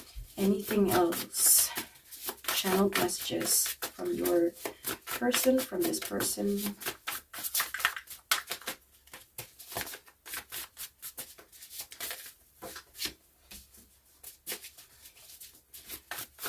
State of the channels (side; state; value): both; identical; correlation 1.00